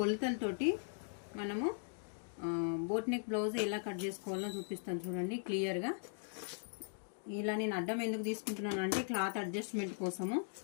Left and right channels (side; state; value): right; silent; digital silence